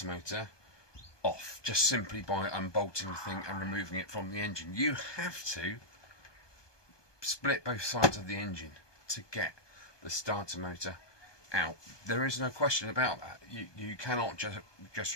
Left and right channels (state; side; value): late; right; 1.2 ms